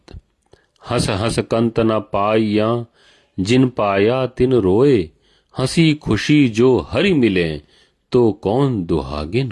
हंस हंस कंत न पाइया, जिन पाया तिन रोए, हंसी खुशी जो हरि मिले, तो कौन दुहागिन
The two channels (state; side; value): identical; both; correlation 1.00